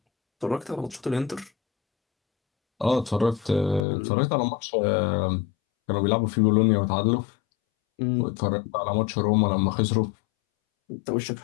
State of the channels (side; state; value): right; drops out; at 3.8 s